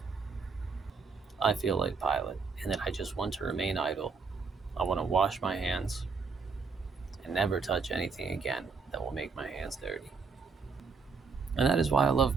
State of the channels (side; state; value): left; quieter; 4.9 dB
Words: I feel like Pilate, and that I just want to remain idle. I want to wash my hands and never touch anything again that will make my hands dirty. And that is why I love